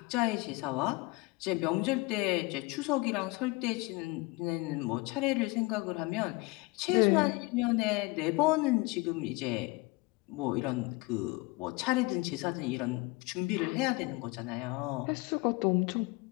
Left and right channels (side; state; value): right; quieter; 23.9 dB